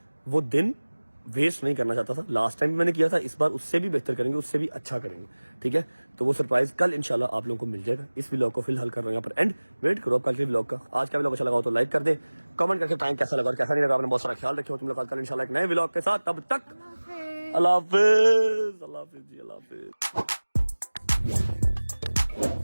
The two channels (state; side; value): inverted; both; correlation -1.00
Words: वो दिन वेस्ट नहीं करना चाहता था। लास्ट टाइम मैंने किया था, इस बार उससे भी बेहतर करेंगे, उससे भी अच्छा करेंगे। ठीक है, तो वो सरप्राइज कल इंशाल्लाह आप लोगों को मिल जाएगा। इस व्लॉग को फिलहाल कर रहा हूँ यहाँ पर एंड, वेट करो आप कल के व्लॉग का। आज का व्लॉग अच्छा लगा हो तो लाइक कर दे, कमेंट करके बताएं कैसा लगा और कैसा नहीं लगा। आपने बहुत सारा ख्याल रखे हो। तुम लोग कल इंशाल्लाह एक नए व्लॉग के साथ, तब तक अल्लाह हाफिज। अल्लाह हाफिज जी, अल्लाह हाफिज।